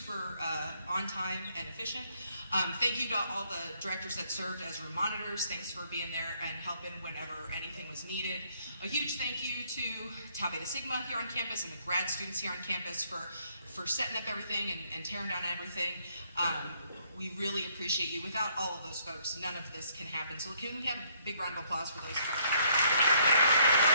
on time and efficient. Thank you to all the directors that served as room monitors. Thanks for being there and helping whenever anything was needed. A huge thank you to Tau Beta Sigma here on campus and the grad students here on campus for setting up everything and tearing down everything. We really appreciate you. Without all of those folks, none of this can happen. So can we have a big round of applause for those folks?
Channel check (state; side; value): inverted; both; correlation -0.68